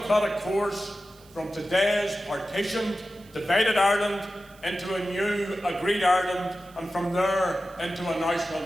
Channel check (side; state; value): right; noise; hiss, 27 dB below the sound